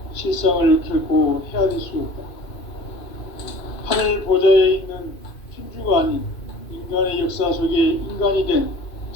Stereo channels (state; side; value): late; right; 2.5 ms